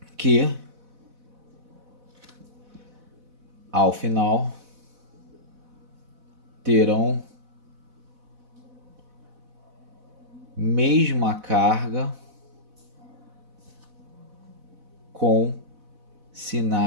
que, ao final, terão mesma carga com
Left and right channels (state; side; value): late; left; 4.0 ms